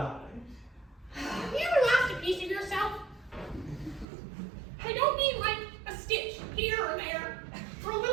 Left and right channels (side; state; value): left; drops out; at 4.0 s